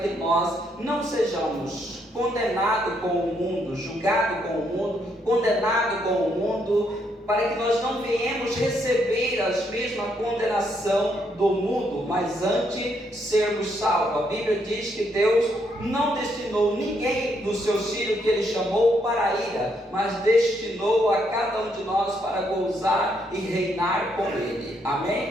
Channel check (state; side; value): normal; both; correlation 0.74